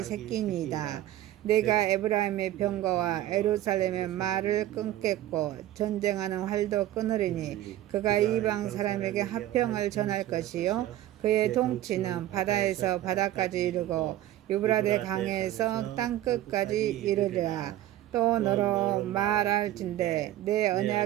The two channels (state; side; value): quieter; left; 13.6 dB